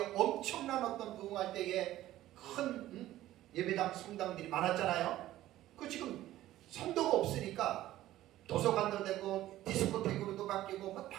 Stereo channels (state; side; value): quieter; left; 14.6 dB